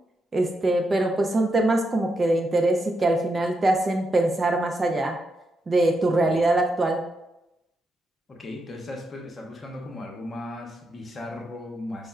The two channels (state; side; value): normal; both; correlation 0.84